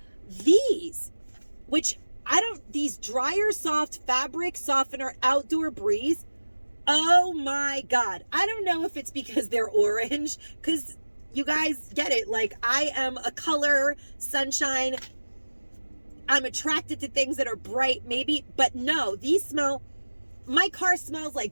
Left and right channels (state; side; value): inverted; both; correlation -1.00